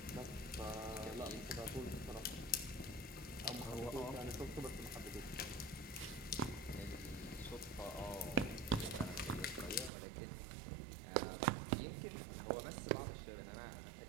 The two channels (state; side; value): drops out; left; at 9.9 s